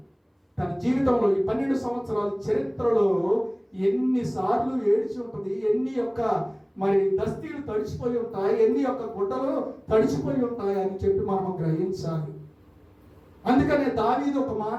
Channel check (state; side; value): identical; both; correlation 1.00